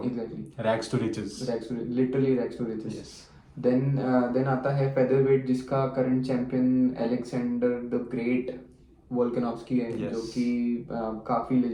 exactly rags to riches. Literally rags to riches. Yes. Then आता है फेदर वेट, जिसका current champion Alexander the great Volkanovski है। Yes. जो कि काफी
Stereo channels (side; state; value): both; identical; correlation 1.00